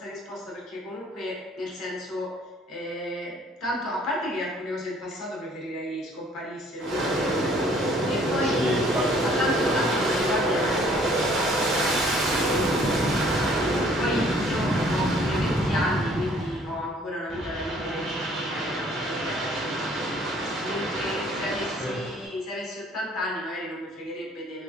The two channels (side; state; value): both; normal; correlation 0.58